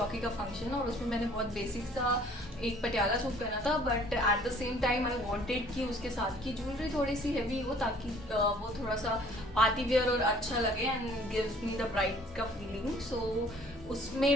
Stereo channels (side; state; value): both; normal; correlation 0.56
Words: का फंक्शन और उसमें मैंने बहुत बेसिक सा एक पटियाला सूट पहना था, but at the same time I wanted कि उसके साथ की ज्वेलरी थोड़ी सी हैवी हो ताकि वो थोड़ा सा पार्टी वेयर और अच्छा लगे and gives me the bride का फीलिंग। सो उसमें